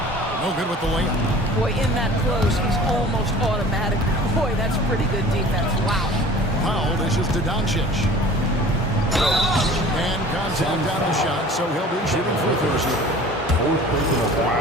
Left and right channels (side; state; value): both; normal; correlation 0.45